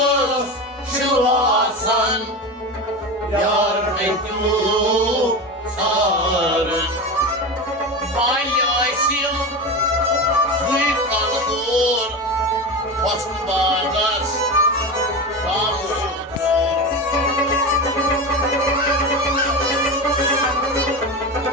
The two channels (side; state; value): both; normal; correlation 0.23